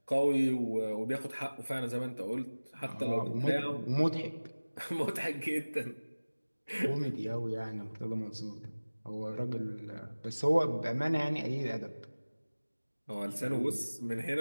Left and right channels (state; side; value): inverted; both; correlation -1.00